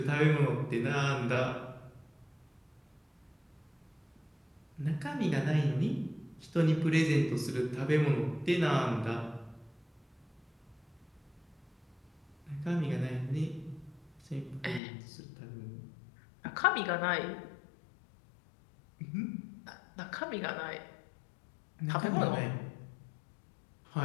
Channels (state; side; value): drops out; right; at 14.8 s